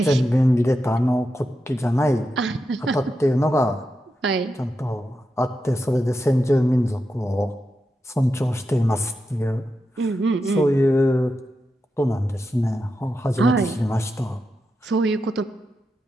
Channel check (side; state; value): both; normal; correlation 0.88